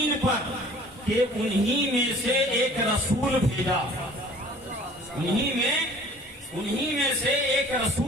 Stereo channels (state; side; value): normal; both; correlation 0.50